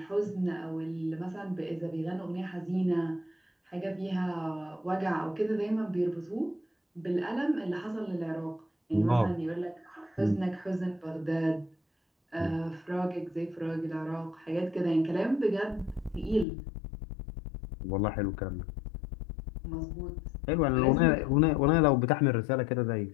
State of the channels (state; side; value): drops out; right; at 16.4 s